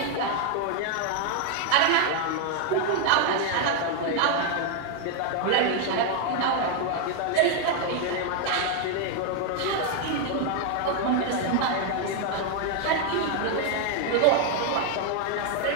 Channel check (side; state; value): both; different; correlation 0.01